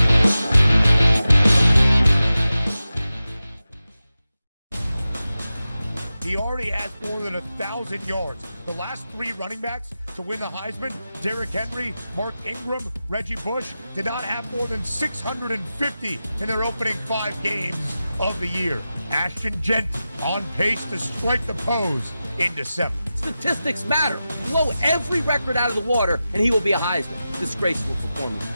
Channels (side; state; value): both; inverted; correlation -0.93